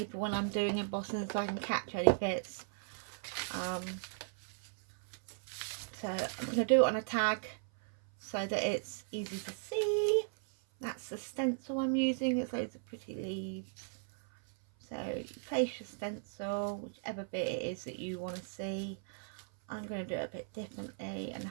when I'm doing embossing so I can catch any bits. So I'm going to do it on a tag so that it's easy to see. That's the stencil I'm using. It's loads of pretty leaves. So you place your stencil, whichever bit it is that you want to see. I'm going to do it a bit differently and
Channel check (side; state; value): left; silent; 53 dB below the other